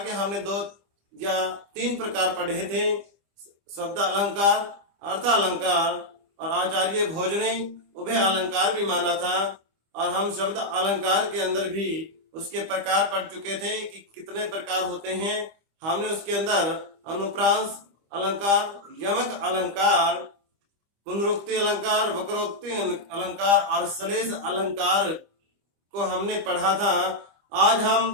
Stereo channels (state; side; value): late; left; 25 ms